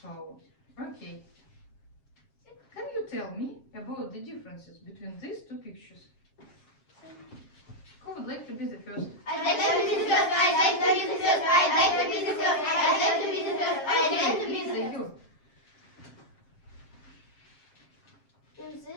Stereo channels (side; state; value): right; late; 7.4 ms